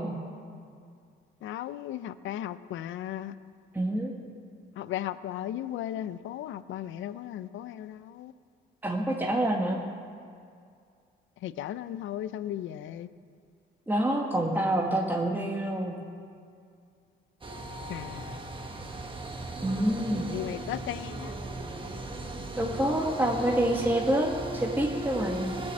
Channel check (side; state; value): both; normal; correlation 0.66